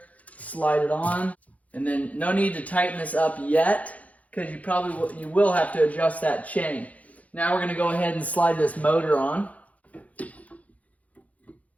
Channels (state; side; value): late; right; 0.069 ms